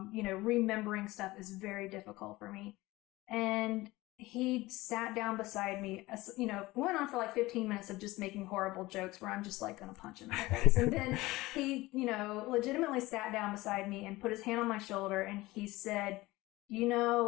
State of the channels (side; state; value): right; quieter; 19.5 dB